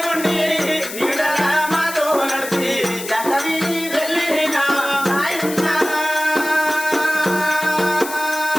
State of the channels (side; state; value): left; noise; hiss, 10 dB below the sound